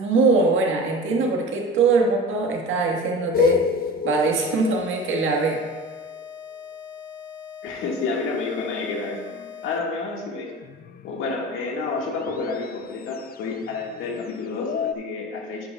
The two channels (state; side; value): normal; both; correlation 0.34